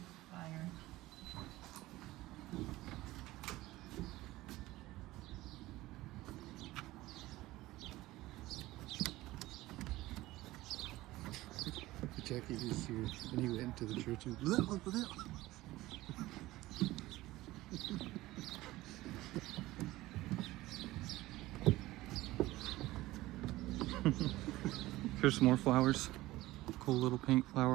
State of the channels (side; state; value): left; quieter; 17.8 dB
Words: Fire. Jackie was here and he went to the church and blah, blah, blah. Here's some more flowers. Cool little pink